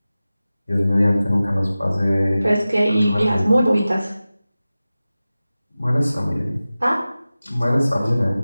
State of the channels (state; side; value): inverted; both; correlation -0.96